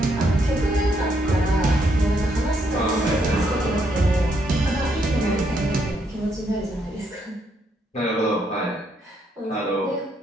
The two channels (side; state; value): both; normal; correlation 0.74